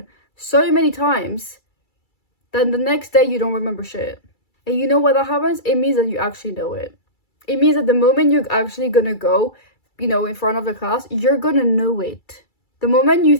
so many times that the next day you don't remember shit. And you know what that happens? It means that you actually know it. It means that the moment you're actually gonna go, in front of the class, you're gonna know it. The moment you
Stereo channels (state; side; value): late; right; 2.3 ms